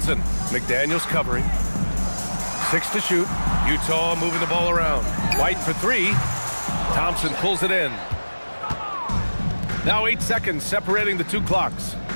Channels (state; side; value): inverted; both; correlation -1.00